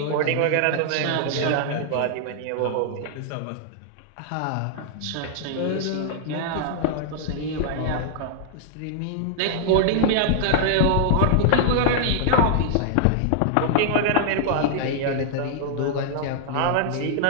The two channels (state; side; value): different; both; correlation -0.01